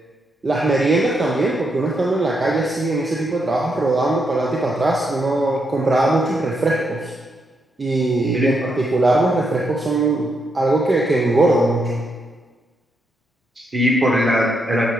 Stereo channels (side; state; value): both; normal; correlation 0.80